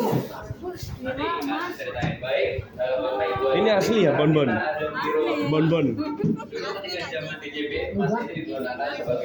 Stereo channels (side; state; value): both; identical; correlation 1.00